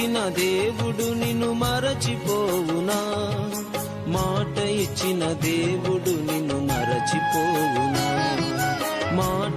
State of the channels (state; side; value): identical; both; correlation 1.00